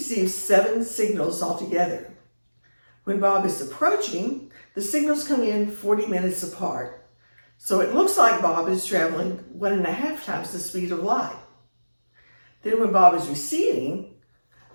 7 signals altogether. When Bob is approaching, the signals come in 40 minutes apart. So it looks like Bob is traveling 1.5 times the speed of light. Then when Bob is receding,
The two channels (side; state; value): both; inverted; correlation -1.00